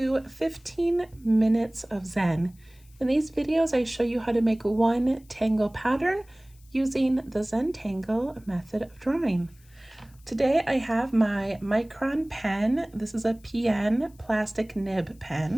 15 Minutes of Zen. In these videos, I show you how to make one tangle pattern using the Zentangle method of drawing. Today I have my Micron pen. This is a PN plastic nib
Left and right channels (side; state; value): left; noise; hiss, 30 dB below the sound